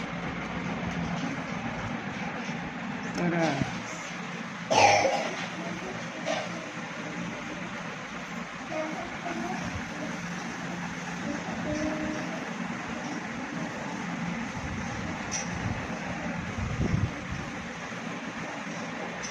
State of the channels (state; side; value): identical; both; correlation 1.00